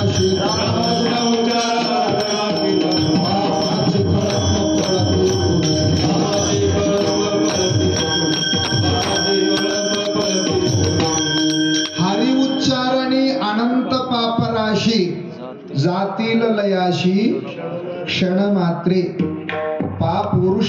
हरि उच्चारणी अनंत पापराशी जातील लयाशी क्षण मात्रे. पाप उरू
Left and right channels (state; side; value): identical; both; correlation 1.00